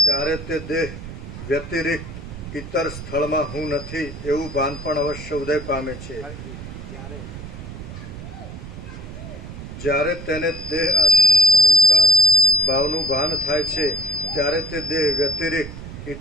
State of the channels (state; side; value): noise; right; rumble, 12 dB below the sound